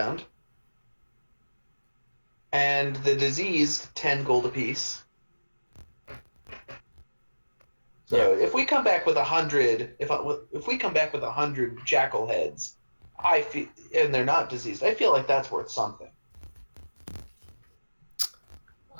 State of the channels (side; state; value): both; inverted; correlation -1.00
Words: And the diseased, 10 gold apiece. So if we come back with 100, if we come back with 100 jackal heads, I feel, and they're not diseased, I feel like that's worth something.